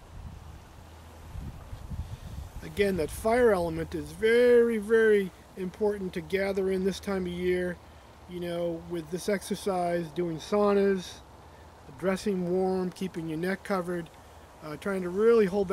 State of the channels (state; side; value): identical; both; correlation 1.00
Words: Again, that fire element is very, very important to gather in this time of year. You know, with this exercise, doing saunas, dressing warm, keeping your neck covered, trying to really hold